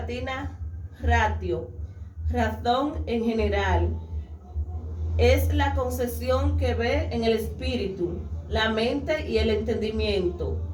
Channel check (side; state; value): both; identical; correlation 1.00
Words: ratio, razón en general. Es la concepción que ve en el espíritu, la mente y el entendimiento,